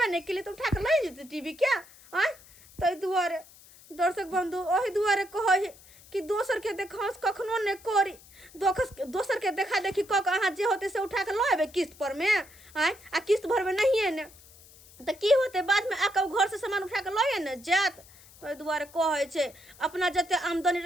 नहीं के लिए तो उठा के ले जेते टीवी क्या आय तै दुआरे दर्शक बंधु ओही दुआरे कहै कि दोसर के देखास कखनो ने करी दोसर के देखा देखी क के अहाँ जे होते से उठा के लेबे किस्त पर में आय आ किस्त भरबे नहीं है ने त की होते बाद में आके घर से सामान उठा के लए ने जात तो दुआरे कहै छै अपना जते आमदनी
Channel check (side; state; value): left; noise; hiss, 23 dB below the sound